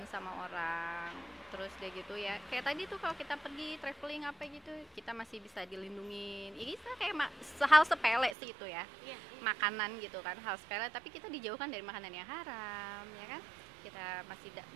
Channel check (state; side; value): drops out; left; at 8.3 s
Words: sama orang. Terus deh gitu ya. Kayak tadi tuh kalau kita pergi traveling apa gitu, kita masih bisa dilindungin. Ini kayak hal sepele sih itu ya. Iya. Makanan gitu kan, hal sepele tapi kita dijauhkan dari makanan yang haram, ya kan?